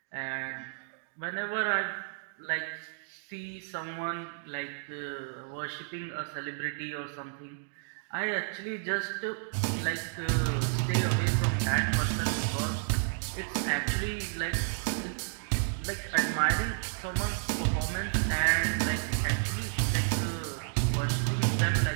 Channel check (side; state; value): left; silent; digital silence